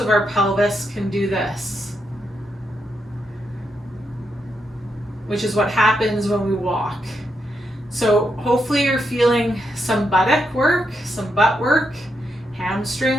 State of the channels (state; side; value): normal; both; correlation 0.82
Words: our pelvis can do this, which is what happens when we walk. So hopefully you're feeling some buttock work, some butt work,